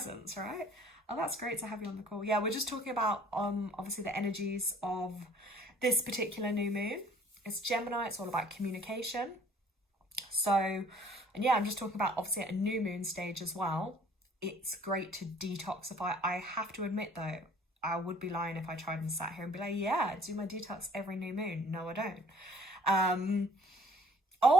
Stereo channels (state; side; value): normal; both; correlation 0.55